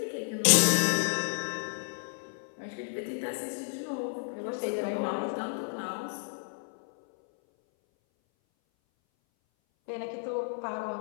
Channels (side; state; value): right; silent; 57 dB below the other